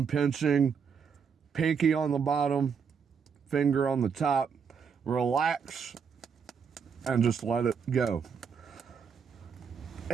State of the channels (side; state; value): left; quieter; 6.4 dB